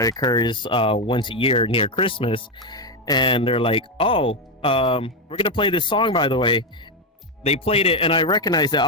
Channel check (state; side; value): normal; both; correlation 0.07